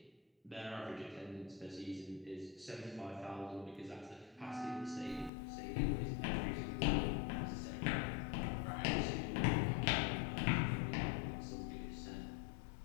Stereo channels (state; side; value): drops out; right; at 5.3 s